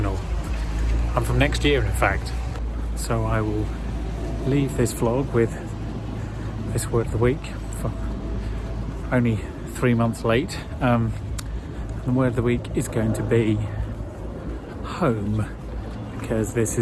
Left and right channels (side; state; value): both; identical; correlation 1.00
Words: I'm from next year, in fact. So I will leave this vlog with this word of the week, for only 3 months late. The word of the week is going to be home, because this